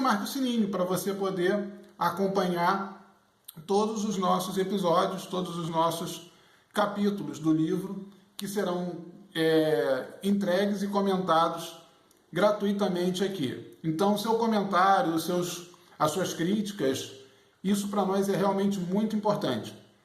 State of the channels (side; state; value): both; identical; correlation 1.00